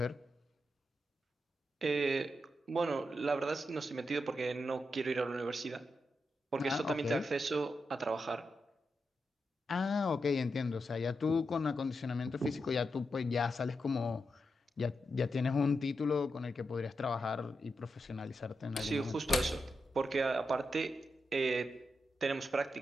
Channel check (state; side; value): normal; both; correlation 0.86